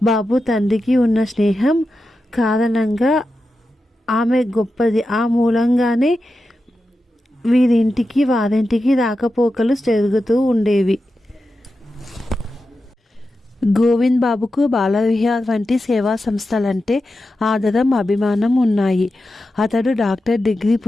బాబు తండ్రికి ఉన్న స్నేహం కారణంగా ఆమె గొప్పది. ఆ మూలంగానే వీరింటికి వారింటికి రాకపోకలు జరుగుతూ ఉండేవి. గోవింద్ బాబుకు బాలవిహార్ వంటి సేవా సంస్థలంటే ఆదరం, అభిమానం ఉన్నాయి. అతడు డాక్టర్ డిగ్రీ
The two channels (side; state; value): both; normal; correlation 0.91